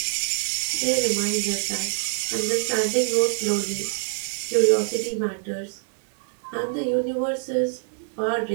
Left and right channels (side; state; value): left; silent; digital silence